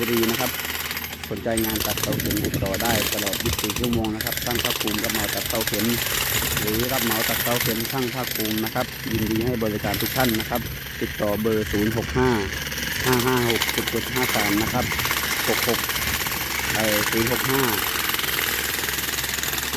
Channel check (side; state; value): both; identical; correlation 1.00